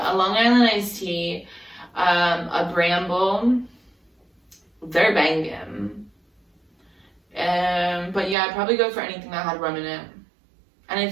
a Long Island iced tea, a Bramble. They're banging. But yeah, I'd probably go for anything that had rum in it. And if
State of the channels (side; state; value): left; drops out; at 8.3 s